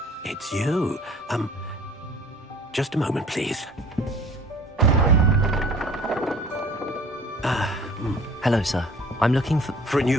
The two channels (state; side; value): normal; both; correlation 0.49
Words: it's you. Just a moment, please. Hello, sir. I'm looking for... For a